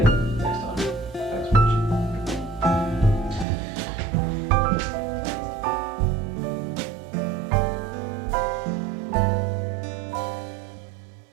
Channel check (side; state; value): left; drops out; at 3.5 s